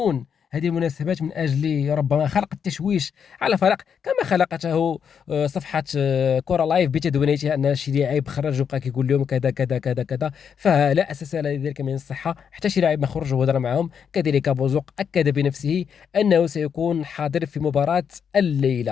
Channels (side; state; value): right; quieter; 7.3 dB